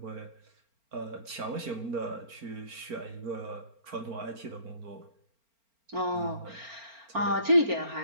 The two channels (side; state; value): left; late; 4.4 ms